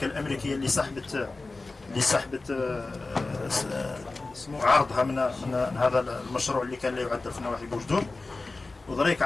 الأمريكية اللي سحبت اسمه عرضها من هذا المشروع اللي كان لا يعدل في نواحي بوجدور. وذلك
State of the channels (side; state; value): right; quieter; 3.5 dB